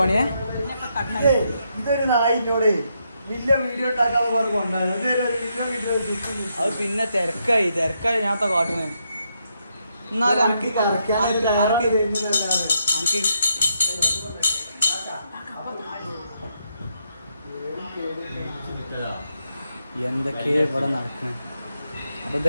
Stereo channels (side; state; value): both; inverted; correlation -0.79